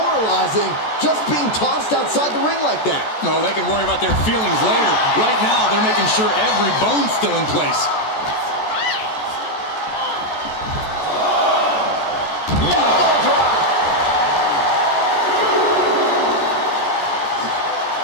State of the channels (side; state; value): right; late; 14 ms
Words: just being tossed outside the ring like that. Oh, they can worry about their feelings later. Right now, they're making sure every bone's still in place. Elbow drop.